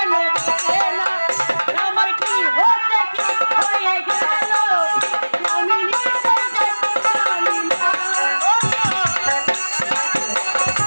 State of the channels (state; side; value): inverted; both; correlation -1.00